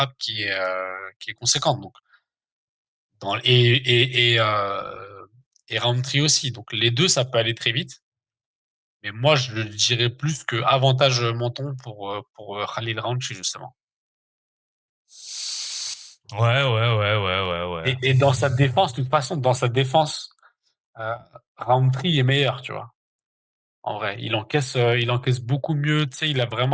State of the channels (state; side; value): identical; both; correlation 1.00